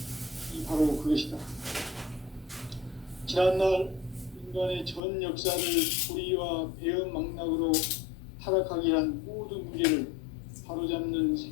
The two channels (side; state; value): right; drops out; at 5.0 s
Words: 바로 그것이다. 지난날 인간의 전 역사를 불의와 배은 망락으로 타락하게 한 모든 문제를 바로잡는